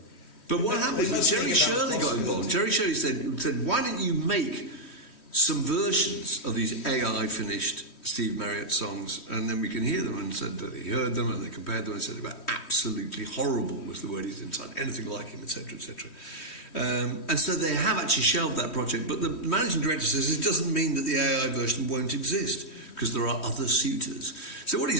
But what happened was Jerry Shirley got involved. Jerry Shirley said, why don't you make some versions of these AI finished Steve Marriott songs, and then we can hear them, and said that he heard them and they compared them and said they were absolutely horrible was the word he's inside, anything like him, etc., etc. And so they have actually shelved that project, but the managing director says it doesn't mean that the AI version won't exist because there are other suitors. So what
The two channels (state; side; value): late; right; 3.1 ms